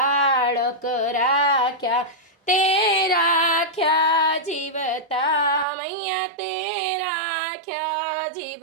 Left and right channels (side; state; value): left; drops out; at 5.7 s